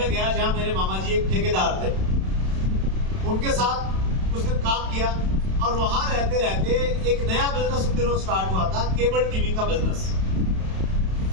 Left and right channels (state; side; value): late; left; 32 ms